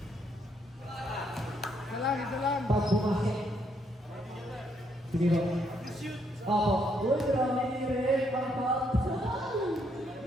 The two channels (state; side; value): normal; both; correlation 0.73